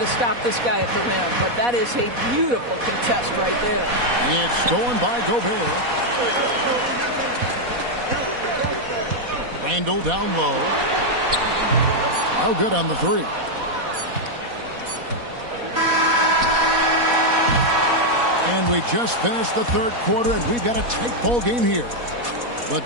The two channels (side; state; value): left; late; 4.1 ms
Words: stop this guy at the rim, but that is a beautiful contest right there. It's stolen by Gobert. Randall down low. No good on the 3. And we just finished the third quarter, and we've got a tight ball game here. But